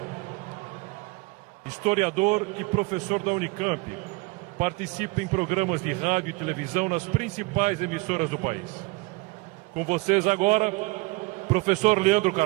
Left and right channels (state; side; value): quieter; left; 24.4 dB